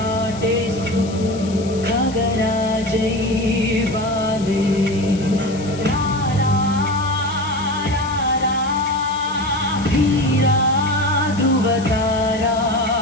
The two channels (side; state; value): left; noise; hiss, 17 dB below the sound